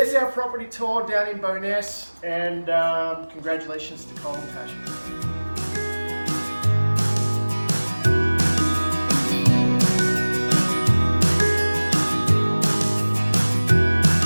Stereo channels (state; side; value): inverted; both; correlation -1.00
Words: our property tour down in Bowness, and congratulations to Cole and Tasha.